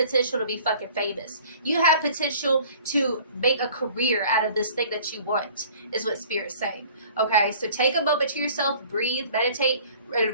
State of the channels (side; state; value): both; inverted; correlation -0.50